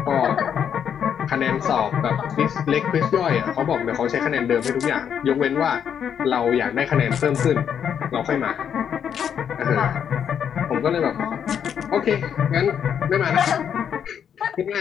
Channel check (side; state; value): right; quieter; 8.3 dB